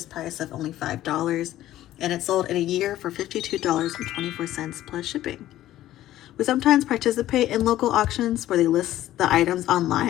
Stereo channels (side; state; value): right; quieter; 13.9 dB